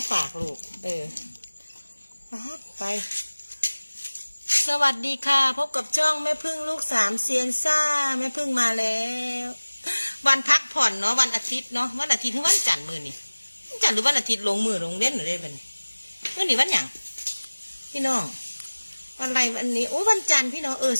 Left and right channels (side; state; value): both; inverted; correlation -1.00